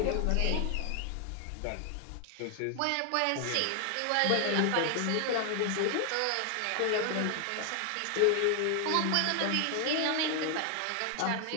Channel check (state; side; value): different; both; correlation 0.00